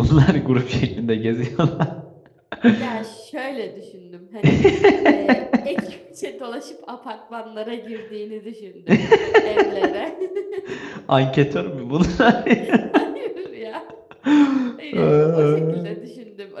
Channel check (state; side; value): identical; both; correlation 1.00